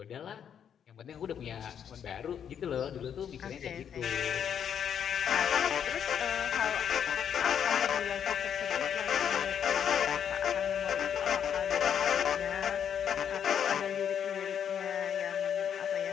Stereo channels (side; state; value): right; quieter; 8.4 dB